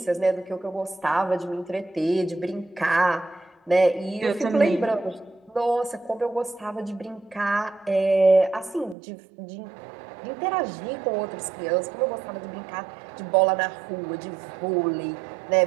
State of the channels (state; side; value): drops out; left; at 9.0 s